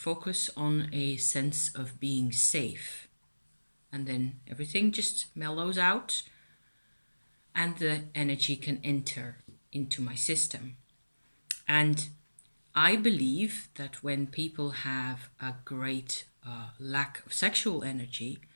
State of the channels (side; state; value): both; inverted; correlation -1.00